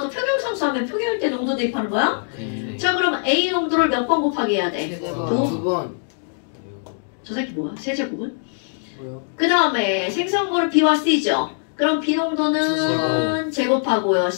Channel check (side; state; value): right; silent; digital silence